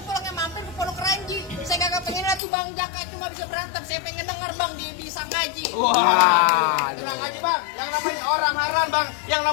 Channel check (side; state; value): right; drops out; at 2.4 s